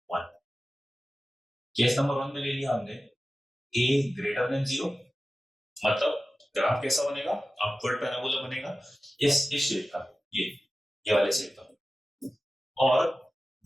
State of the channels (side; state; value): both; normal; correlation 0.95